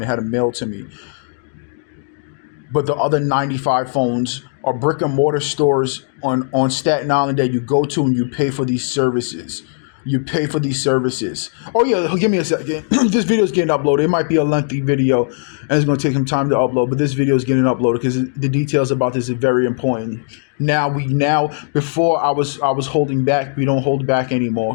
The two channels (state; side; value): silent; right; digital silence